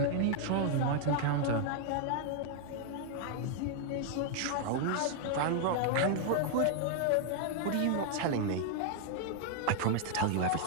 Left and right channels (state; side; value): different; both; correlation 0.00